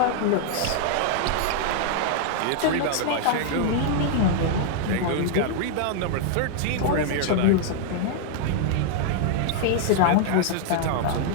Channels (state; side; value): different; both; correlation -0.01